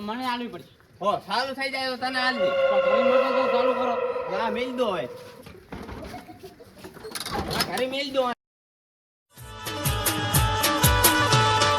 મને આલવી પડશે. હો સારું થઈ જાય તો તને હાલ દે તો ઘરે મોટો તો ચાલુ કરો. હા મેલ દો હવે ઘરે મેલ દો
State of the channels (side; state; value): both; identical; correlation 1.00